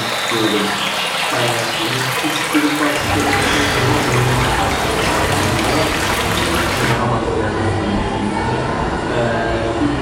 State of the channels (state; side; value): identical; both; correlation 1.00